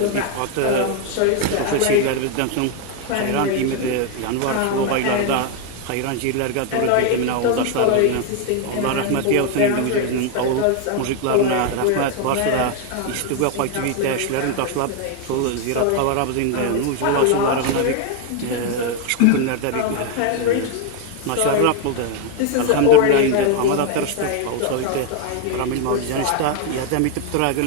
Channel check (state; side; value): different; both; correlation 0.01